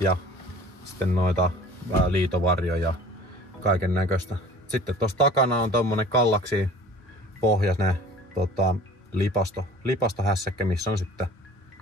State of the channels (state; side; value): normal; both; correlation 0.46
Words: ja sitten noita liitovarjoja ja kaiken näköistä. Sitten tuossa takana on tommonen kallaksi pohjainen lipastohässäkkä, missä on sitten